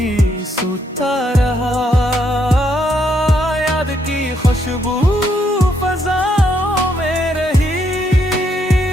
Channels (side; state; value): both; normal; correlation 0.75